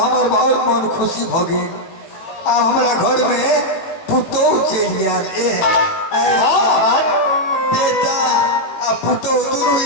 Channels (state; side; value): late; right; 18 ms